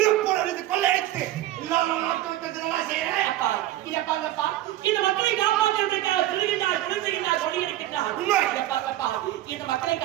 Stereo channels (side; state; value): left; quieter; 14.5 dB